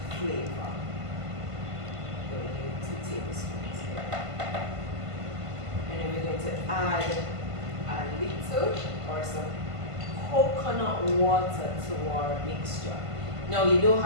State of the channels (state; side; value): late; left; 1.5 ms